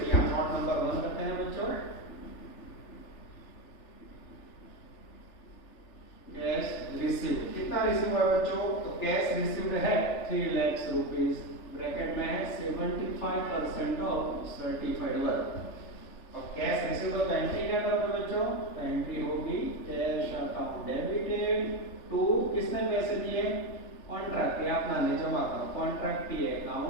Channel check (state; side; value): late; right; 3.4 ms